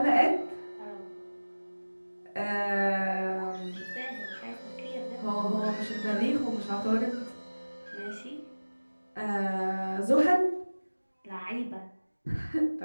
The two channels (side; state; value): both; inverted; correlation -1.00